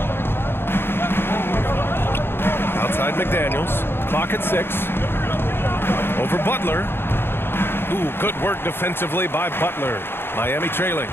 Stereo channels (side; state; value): right; late; 0.11 ms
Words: Outside McDaniels. Clock at 6. Over Butler. Ooh, good work defensively by Butler. Miami trailing.